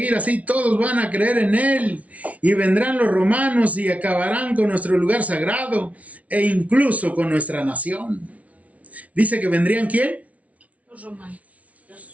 así, todos van a creer en él. Y vendrán los romanos y acabarán con nuestro lugar sagrado e incluso con nuestra nación. Dice que vendrían, ¿quién? Los romanos.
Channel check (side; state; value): left; late; 0.067 ms